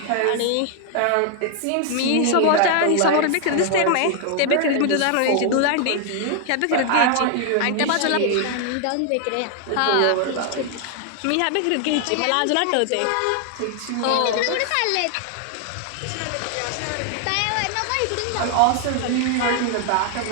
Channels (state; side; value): different; both; correlation 0.00